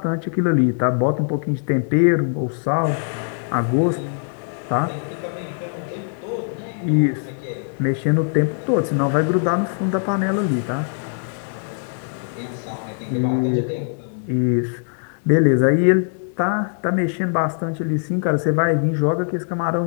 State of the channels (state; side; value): silent; right; digital silence